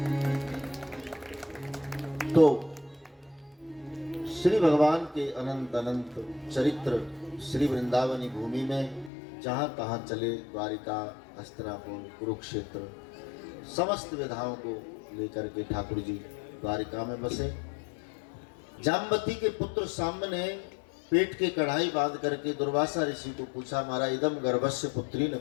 श्री भगवान के अनंत अनंत चरित्र श्री वृंदावनी भूमि में जहाँ कहाँ चले, द्वारिका, हस्तिनापुर, कुरुक्षेत्र, समस्त विधाओं को लेकर के ठाकुर जी द्वारिका में बसे। जाम्बती के पुत्र साम्ब ने पेट के कढ़ाई बांध करके दुर्वासा ऋषि को पूछा, मारा इदम गर्भस्य पुत्री न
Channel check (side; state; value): right; drops out; at 9.1 s